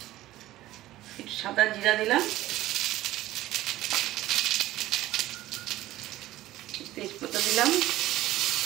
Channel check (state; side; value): quieter; left; 15.7 dB